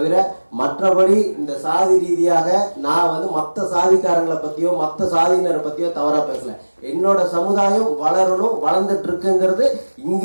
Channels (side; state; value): both; inverted; correlation -1.00